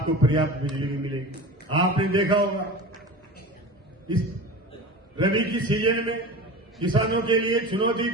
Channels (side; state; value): both; normal; correlation 0.32